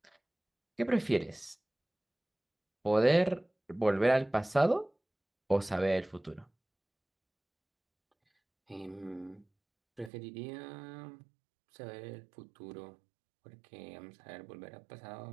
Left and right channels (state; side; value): drops out; left; at 10.1 s